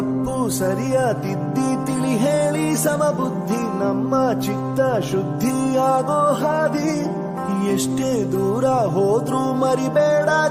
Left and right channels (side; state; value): both; identical; correlation 1.00